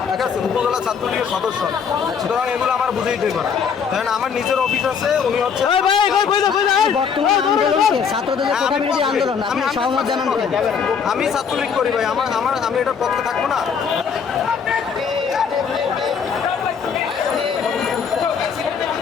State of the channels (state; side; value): quieter; right; 6.6 dB